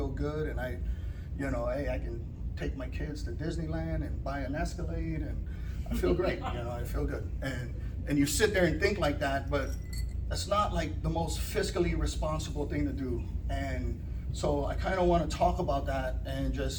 good. And I, you know, hey, I can take my kids to Disneyland and buy an Escalade, and I feel great. You know, I feel good. And you sit there and think like that, but that's not like the most fiscally responsible thing to do. And so I kind of want to talk about that, and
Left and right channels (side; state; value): both; identical; correlation 1.00